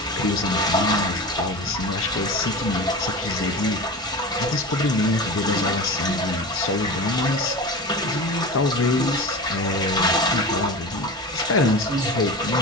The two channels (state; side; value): normal; both; correlation 0.29